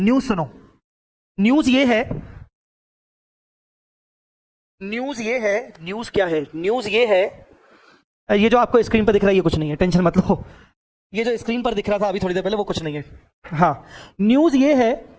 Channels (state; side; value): identical; both; correlation 1.00